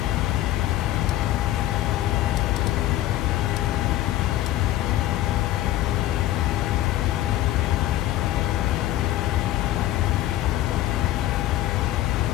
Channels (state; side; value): quieter; right; 14.6 dB